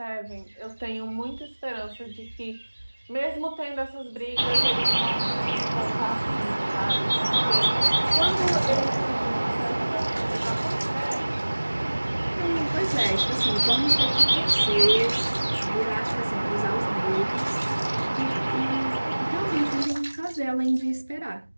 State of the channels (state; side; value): inverted; both; correlation -1.00